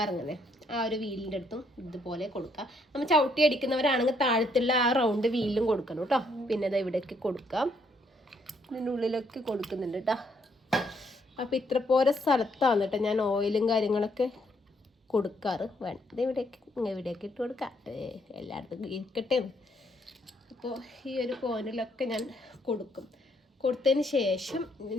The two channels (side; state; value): both; normal; correlation 0.71